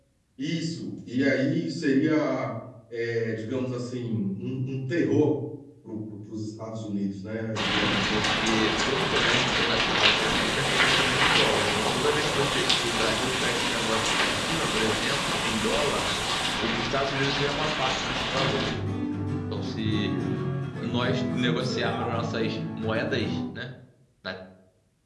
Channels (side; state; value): both; identical; correlation 1.00